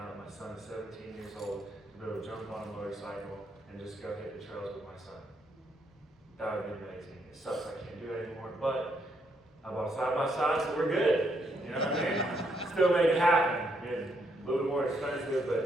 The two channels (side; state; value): both; normal; correlation 0.75